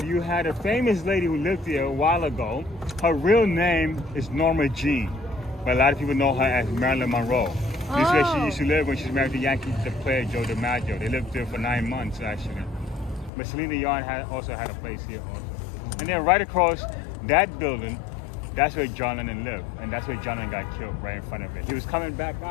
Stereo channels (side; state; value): right; drops out; at 13.3 s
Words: you had a famous lady who lived here a while ago. Her real name is Norma Jean, but a lot of people know her as Marilyn Monroe. This is where she used to live when she was married to Yankee player Joe DiMaggio. They lived there for 9 months actually. But Selena Yarn also had a place here also. And then right across that building, that's where John Lennon lived. And that's where John Lennon got killed, right in front of it. He was coming back